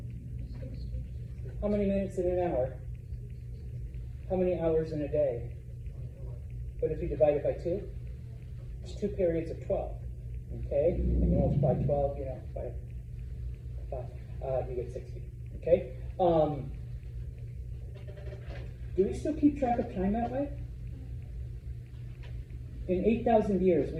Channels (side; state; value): both; identical; correlation 1.00